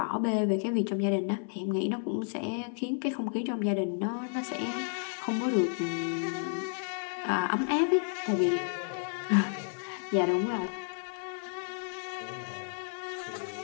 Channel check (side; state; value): right; silent; 57 dB below the other